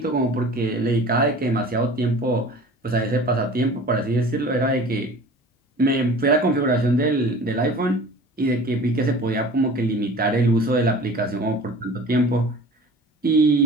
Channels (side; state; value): both; normal; correlation 0.42